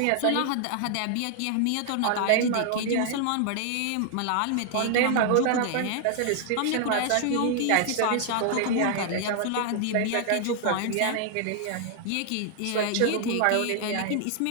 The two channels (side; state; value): both; different; correlation 0.00